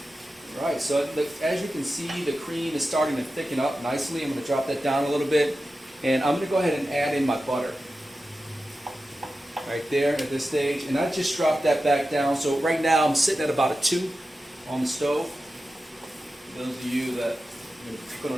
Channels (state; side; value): normal; both; correlation 0.92